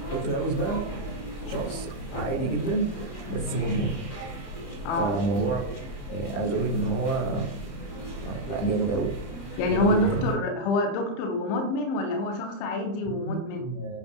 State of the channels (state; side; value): late; right; 30 ms